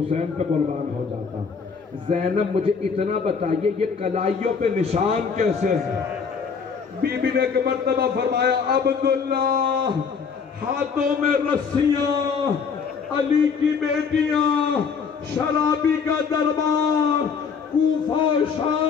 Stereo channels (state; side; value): quieter; right; 5.8 dB